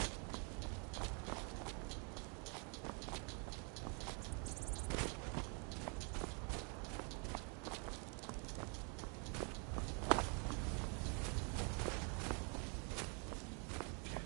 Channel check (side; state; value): left; quieter; 37.0 dB